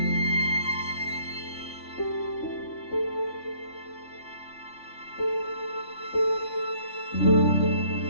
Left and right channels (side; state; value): right; late; 3.5 ms